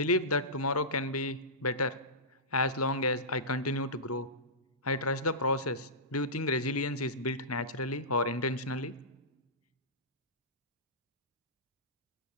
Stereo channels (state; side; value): normal; both; correlation -0.18